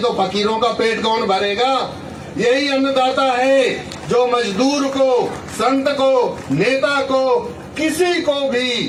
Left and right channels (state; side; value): identical; both; correlation 1.00